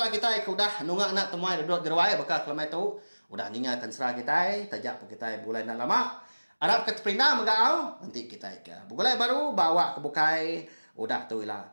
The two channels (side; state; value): both; inverted; correlation -1.00